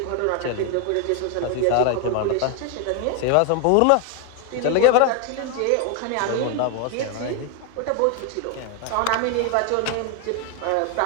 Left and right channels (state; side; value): different; both; correlation 0.00